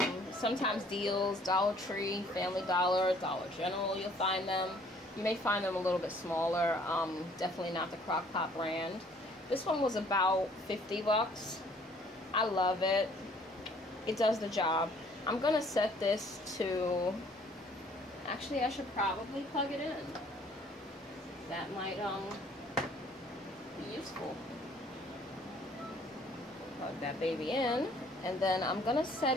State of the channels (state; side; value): normal; both; correlation 0.59